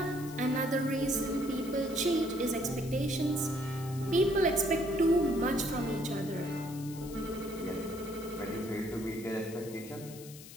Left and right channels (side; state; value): left; noise; hiss, 16 dB below the sound